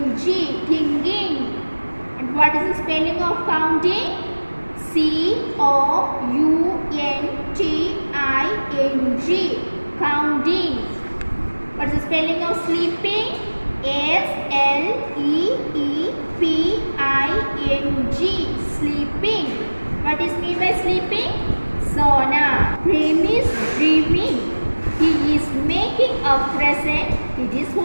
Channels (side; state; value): both; inverted; correlation -1.00